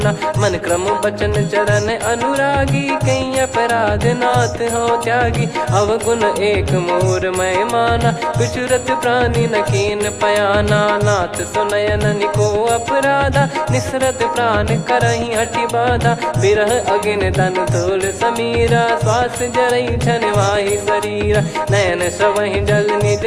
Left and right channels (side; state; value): both; identical; correlation 1.00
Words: मन क्रम बचन चरण अनुरागी कहीं अपराध नाथ हो त्यागी। अवगुण एक मोर मैं माना विचुरत प्राणी न कीन पयाना। नाथ सुनयन निको अपराधा निसरत प्राण करही हटि बाधा। बिरह अगिन तन तोल समीरा श्वास जरई छन वाहि शरीरा। नयन सवहि जल निज